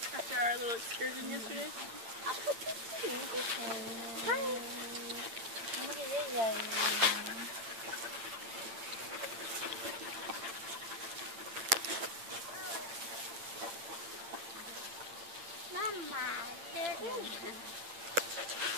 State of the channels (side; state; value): left; late; 8.8 ms